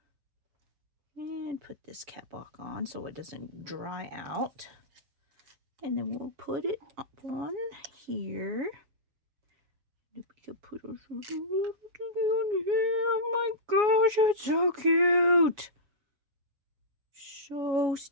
And put this cap back on so it doesn't dry out. And then we'll put it up on here. We can put a little thing on here. Oh my gosh, it's so cute. So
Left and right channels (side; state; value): left; late; 7.2 ms